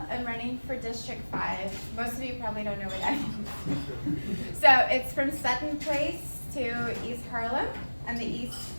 I'm running for District 5. Most of you probably don't know what that is. So it's from Sutton Place to East Harlem on the east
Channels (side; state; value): both; inverted; correlation -1.00